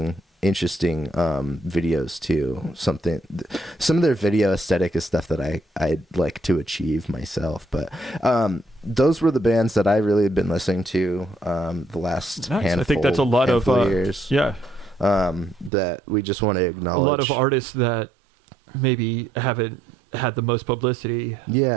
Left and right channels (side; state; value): left; drops out; at 15.7 s